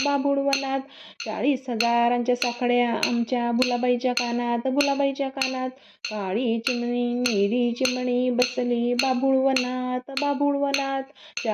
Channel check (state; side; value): identical; both; correlation 1.00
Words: बाभुळवनात. 40,000च्या साखळ्या आमच्या भुलाबाईच्या कानात भुलाबाईच्या कानात. काळी चिमणी निळी चिमणी बसली बाभुळवनात बाभुळवनात.